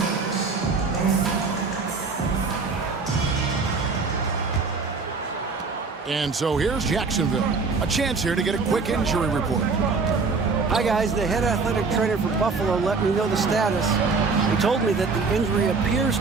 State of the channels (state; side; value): quieter; left; 4.4 dB